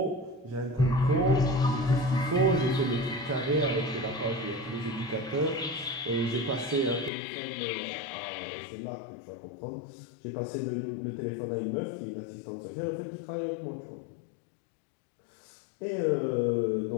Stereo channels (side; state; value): right; drops out; at 7.1 s